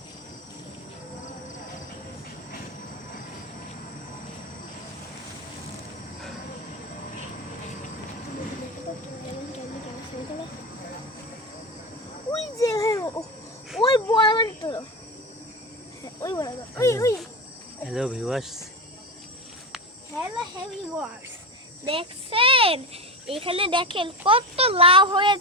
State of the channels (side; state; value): both; normal; correlation 0.20